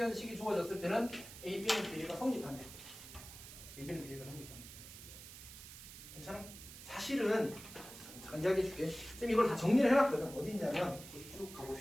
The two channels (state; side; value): noise; right; hiss, 14 dB below the sound